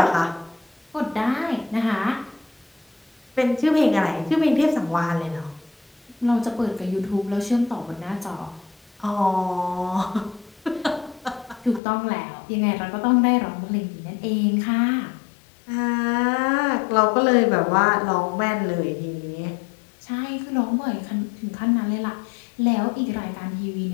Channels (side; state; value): right; drops out; at 11.8 s